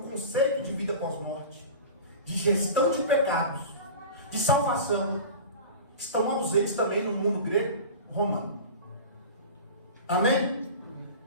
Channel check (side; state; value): both; inverted; correlation -0.34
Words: de vida pós-morte, de gestão de pecados, de salvação, estão ausentes também no mundo grego romano. Amém?